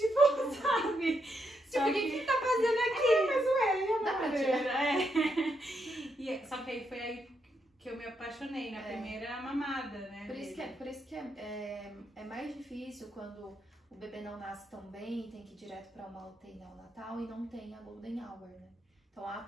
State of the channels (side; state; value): both; normal; correlation 0.80